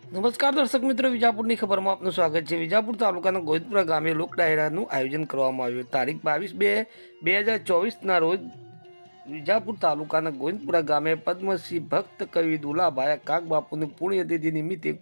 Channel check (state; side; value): inverted; both; correlation -1.00